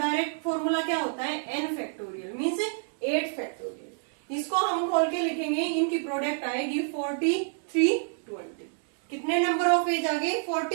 फॉर्मूला क्या होता है? n factorial means 8 factorial. इसको हम खोल के लिखेंगे. इनकी प्रोडक्ट आएगी 4320. कितने नंबर ऑफ वेज आ गए?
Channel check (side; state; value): left; silent; 59 dB below the other